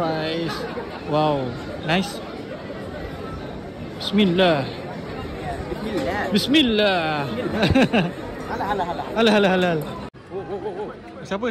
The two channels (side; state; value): both; identical; correlation 1.00